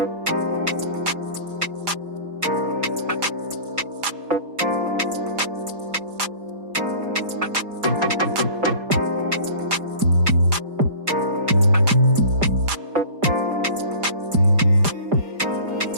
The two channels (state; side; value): late; left; 5.0 ms